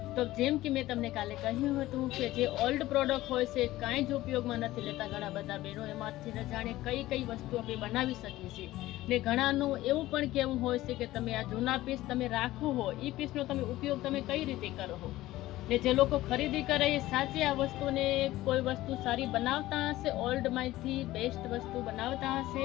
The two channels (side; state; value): right; quieter; 16.4 dB